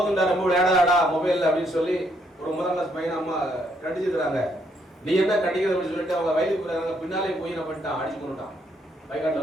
ரொம்ப விளையாடாடா மொபைல் அப்படின்னு சொல்லி ஒரு 1ஆம் கிளாஸ் பையனை அம்மா கண்டிச்சிருக்கிறாங்க. நீ என்ன கண்டிக்கிறது அப்படின்னு சொல்லிட்டு அவங்க வயலுக்கு போறாங்க. பின்னாலே போய் என்ன பண்ணிட்டான், அடிச்சு கொண்டுட்டான்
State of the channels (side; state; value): both; normal; correlation 0.72